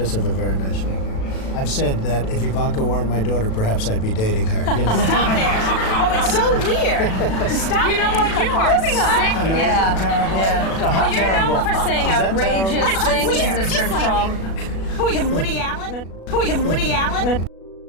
have a very nice figure. I've said that if Ivanka weren't my daughter, perhaps I'd be dating her. You know? Stop it! Oh, it's so weird. Stop. You know what? You are sick. Yeah. Terrible? Yeah. How Well, you're terrible. known for saying Is that outrageous terrible? things, Mr. Trump. Who are you, Woody Allen? Who are you, Woody Allen?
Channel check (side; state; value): right; late; 36 ms